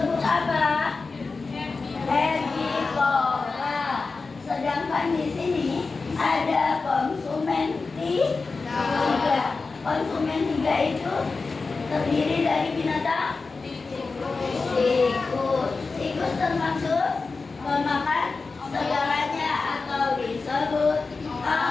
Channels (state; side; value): quieter; right; 4.1 dB